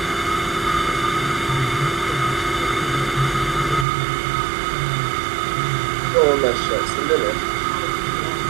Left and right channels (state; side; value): drops out; left; at 3.9 s